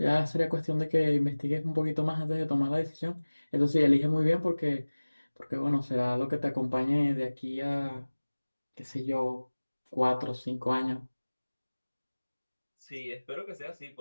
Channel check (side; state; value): both; inverted; correlation -1.00